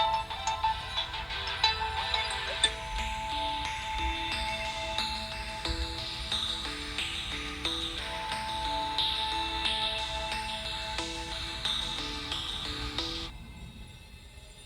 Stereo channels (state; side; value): identical; both; correlation 1.00